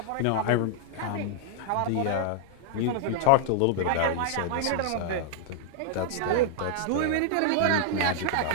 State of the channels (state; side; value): different; both; correlation -0.01